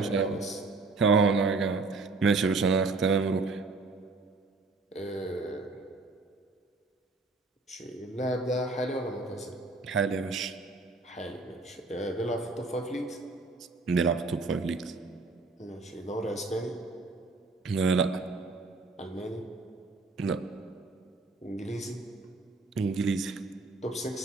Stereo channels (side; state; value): left; quieter; 3.7 dB